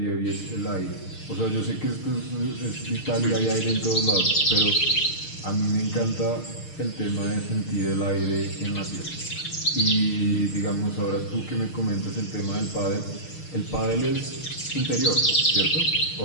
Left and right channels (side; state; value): right; late; 6.6 ms